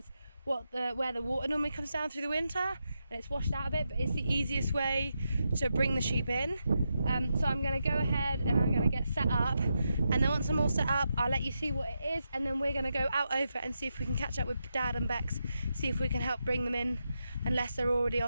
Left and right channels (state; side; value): inverted; both; correlation -0.86